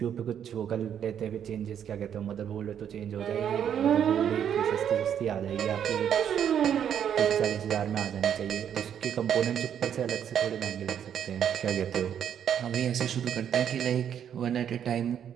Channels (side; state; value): left; quieter; 9.0 dB